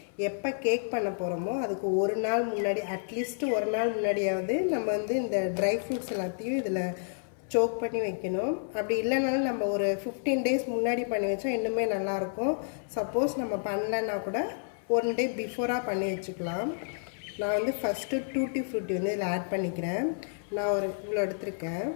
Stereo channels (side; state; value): right; silent; 56 dB below the other